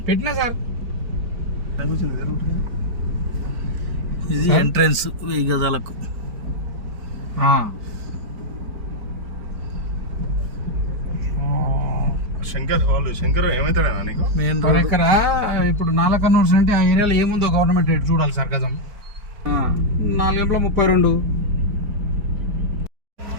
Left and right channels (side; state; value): left; late; 4.5 ms